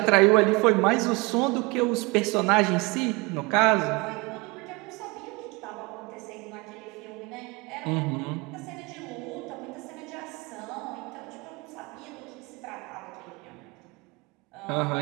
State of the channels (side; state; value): left; quieter; 26.4 dB